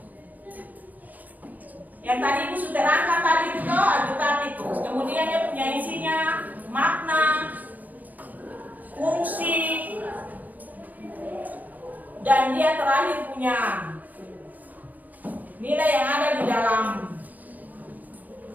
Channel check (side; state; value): left; late; 0.081 ms